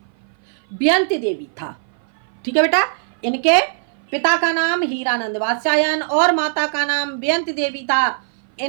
बेयंती देवी था। ठीक है बेटा, इनके पिता का नाम हीरानंद वात्स्यायन और माता का नाम बेयंती देवी था।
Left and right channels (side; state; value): left; silent; 57 dB below the other